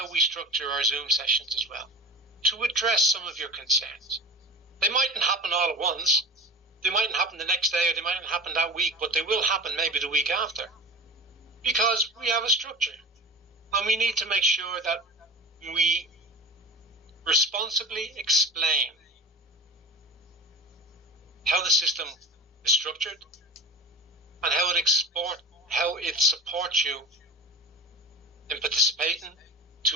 we structure our Zoom sessions as well, to address some of your concerns. They mightn't happen all at once. They mightn't happen the next day, or they mightn't happen that week, but they will happen maybe the week after. Because we have a structure. And we need to make sure that we responsibly explain how the system is structured and how it supports you in participating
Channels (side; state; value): both; normal; correlation 0.33